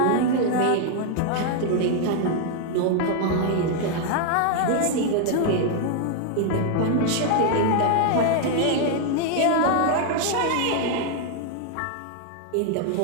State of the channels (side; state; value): both; different; correlation 0.00